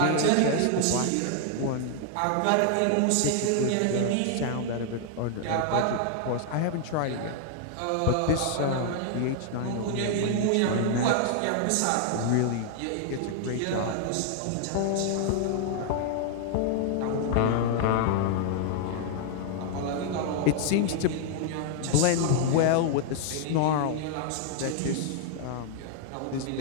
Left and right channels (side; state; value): both; different; correlation 0.00